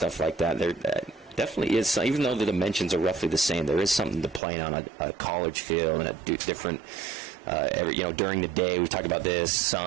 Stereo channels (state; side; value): drops out; left; at 4.4 s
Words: like that. There definitely is, even though the dimensions are roughly the same, there is something to playing on a college field and a different, during the day. We talk about this,